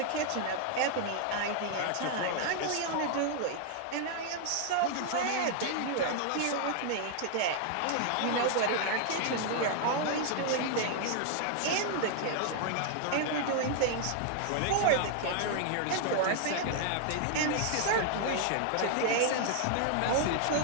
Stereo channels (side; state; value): both; different; correlation 0.00